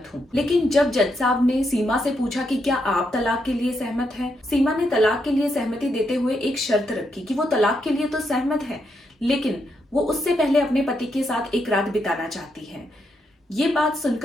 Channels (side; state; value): both; normal; correlation 0.80